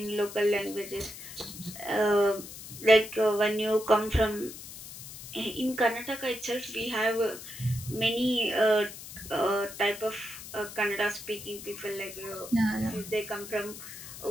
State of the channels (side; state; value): left; noise; hiss, 13 dB below the sound